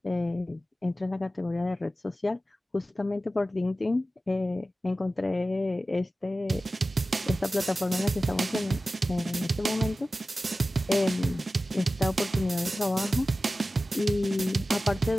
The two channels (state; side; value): normal; both; correlation 0.95